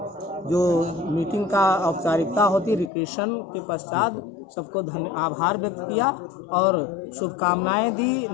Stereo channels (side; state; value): right; drops out; at 2.9 s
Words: जो मीटिंग का औपचारिकता होती रिक्रेशन के पश्चात सबको आभार व्यक्त किया और शुभकामनाएं दी